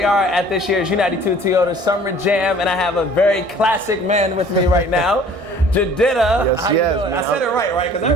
at this year's U92 Toyota Summer Jam, and I have a very classic man with me right now, Jidenna. Yes, yes, man. I said it right? Because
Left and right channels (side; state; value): left; late; 1.6 ms